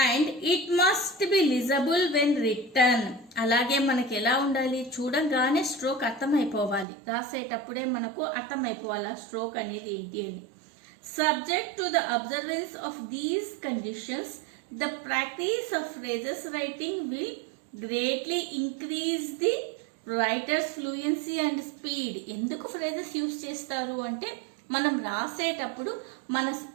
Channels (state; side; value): drops out; left; at 6.9 s